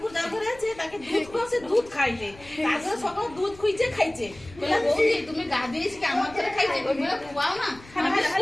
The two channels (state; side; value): noise; left; rumble, 22 dB below the sound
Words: যার ঘরে আছে তাকে দুধ খাওয়াছে, দুধ খাইলে তারপরে সকাল দুধ খুঁজছে খাইছে। তুমি গা দিয়েছি আমার ঘরে খাইছে, তুমি খুয়াও না আমার